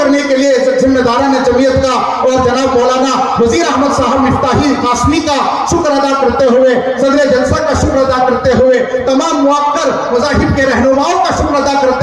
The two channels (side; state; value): both; identical; correlation 1.00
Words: के लिए जिम्मेदारान जमीयत का और जनाब मौलाना वजीर अहमद साहब मिफ्ताही कासमी का शुक्र अदा करते हुए, सदर जलसा का शुक्र अदा करते हुए, तमाम मुआक्कर मज़ाहिब के रहनुमाओं का शुक्र अदा